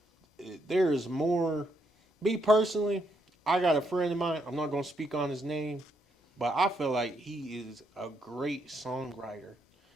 there is more. Me personally, I got a friend of mine. I'm not gonna speak on his name, but I feel like he is a great songwriter.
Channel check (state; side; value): normal; both; correlation 0.77